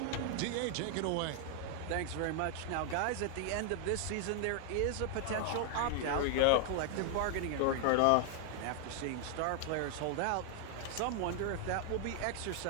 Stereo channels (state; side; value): different; both; correlation 0.00